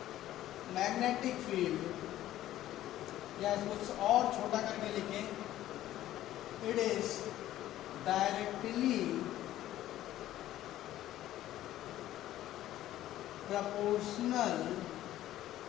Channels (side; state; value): right; quieter; 13.7 dB